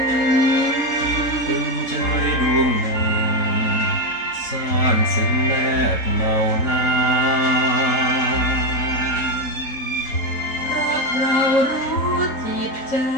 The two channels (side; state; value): right; late; 3.8 ms